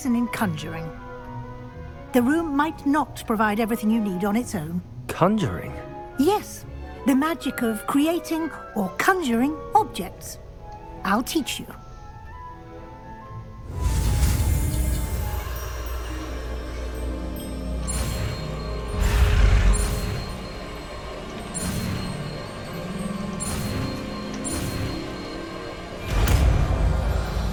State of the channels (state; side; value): identical; both; correlation 1.00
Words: in conjuring. The room might not provide everything you need on its own. Conjuring? Yes, the magic of creating or conjuring objects. I'll teach you.